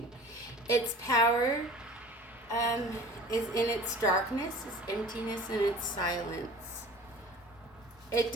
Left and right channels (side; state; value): both; normal; correlation 0.43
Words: Its power is in its darkness, its emptiness, and its silence. It